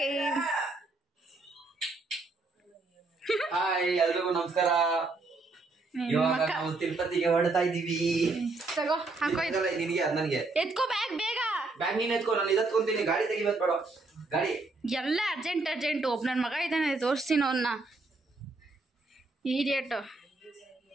ಹಾಯ್ ಎಲ್ರಿಗೂ ನಮಸ್ಕಾರ. ಇವಾಗ ನಾವು ತಿರುಪತಿಗೆ ಹೊರಡ್ತಾ ಇದೀವಿ. ತಗೋ ಹಾಕೋ, ನಿನಗೆ ಅದು ನನಗೆ. ಎತ್ಕೋ ಬ್ಯಾಗ್ ಬೇಗ. ಬ್ಯಾಗ್ ನೀನ್ ಎತ್ಕೋ, ನಾನು ಇದತ್ಕೊಂತೀನಿ. ಗಾಡಿ ತೆಗಿಬೇಕು ಬೇಡ, ಗಾಡಿ ಎಲ್ಲ ಅರ್ಜೆಂಟ್ ಒಬ್ಬ ನನ್ನ ಮಗ ಇದ್ದಾನೆ, ತೋರಿಸ್ತೀನಿ ಅವನ್ನ. ಈಡಿಯಟ್.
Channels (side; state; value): left; quieter; 3.5 dB